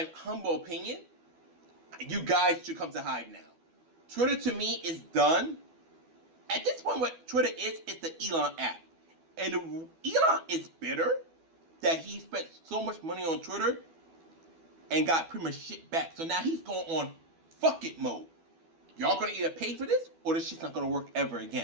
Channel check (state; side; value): late; left; 12 ms